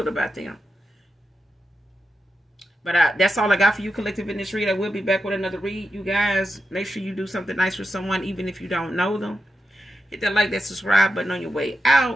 about them. But that's all I got for you, collective, in this read. I will be back with another read. You guys, make sure you do something nice for someone, even if you don't know them. Hit that like, that subscribe button on your way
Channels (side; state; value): both; normal; correlation 0.89